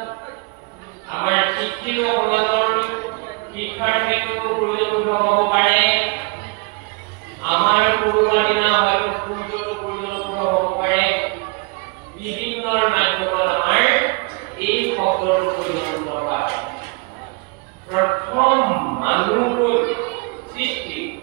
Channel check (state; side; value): quieter; left; 29.7 dB